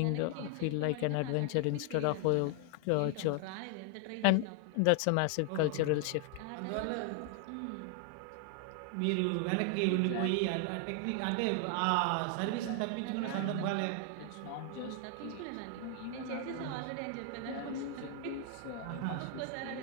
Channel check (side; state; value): both; different; correlation 0.00